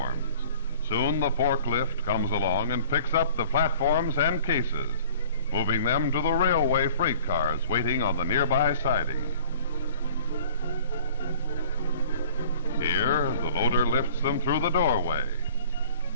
Soon the forklift comes along and picks up the platforms and cases, moving them to the railway freight cars waiting on the nearby siding. Here, the loader lifts them through the doorway.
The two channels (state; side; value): inverted; both; correlation -0.48